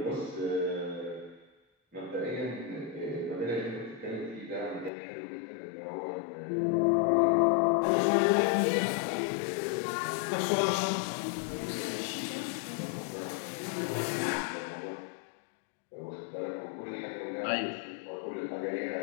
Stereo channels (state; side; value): drops out; right; at 4.9 s